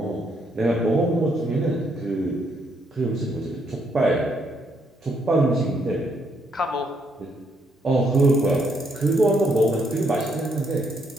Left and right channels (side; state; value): both; normal; correlation 0.74